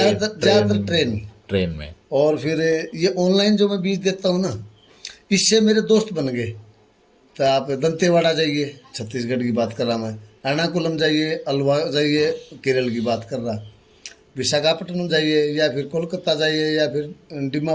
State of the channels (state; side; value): identical; both; correlation 1.00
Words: ट्रेन में। और फिर ये ऑनलाइन जो मैं बीज देता हूँ ना, इससे मेरे दोस्त बन गए। तो आप दंतेवाड़ा जाइए, छत्तीसगढ़ की बात कर रहा मैं, एर्नाकुलम जाइए, अलवा जाइए, केरल की बात कर रहा, विशाखापट्टनम जाइए, या फिर कोलकाता जाइए, या फिर